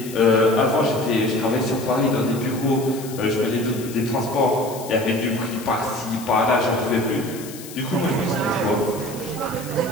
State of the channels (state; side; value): noise; left; hiss, 15 dB below the sound